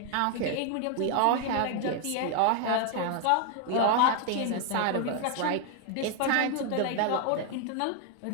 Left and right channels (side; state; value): both; different; correlation 0.01